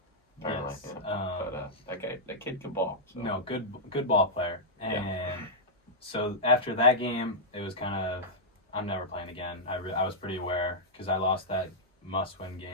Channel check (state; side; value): normal; both; correlation -0.09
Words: Apparently, Yes. yeah. But that kid could ball. So. No, good ball player. And so after that game, it was kind of, I'm never playing again. I was pretty aware because I lost that must-win